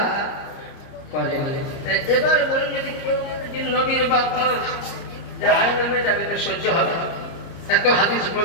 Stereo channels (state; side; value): late; right; 30 ms